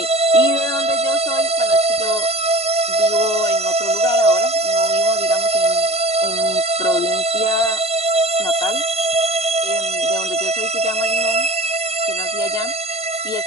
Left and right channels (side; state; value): both; normal; correlation 0.42